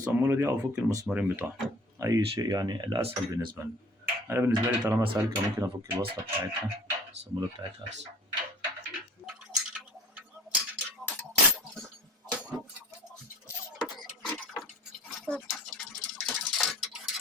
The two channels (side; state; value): both; normal; correlation 0.42